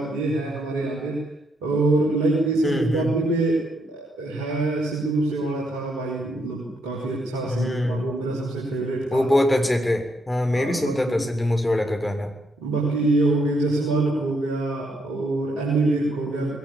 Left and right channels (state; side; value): normal; both; correlation 0.75